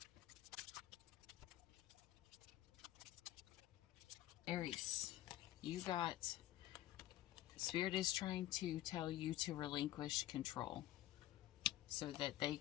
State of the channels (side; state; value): right; quieter; 14.4 dB